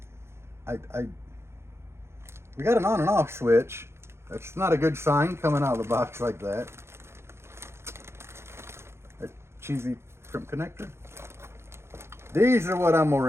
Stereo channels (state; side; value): late; left; 0.12 ms